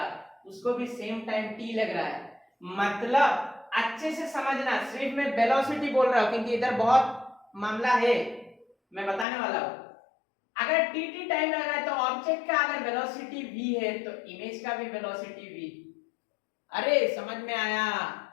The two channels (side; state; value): right; drops out; at 9.2 s